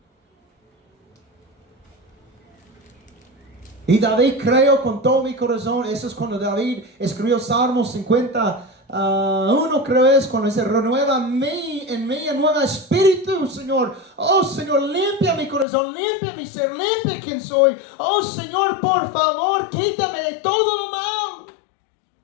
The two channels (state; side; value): drops out; right; at 15.7 s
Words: Y David creyó con todo mi corazón. Eso es cuando David escribió Salmos 51, creo es, cuando dice, renueva en mí nuevo espíritu, Señor. Oh Señor, limpia mi corazón, limpia mi ser, limpia quien soy. Oh Señor, por favor, quítame de todo lo malo.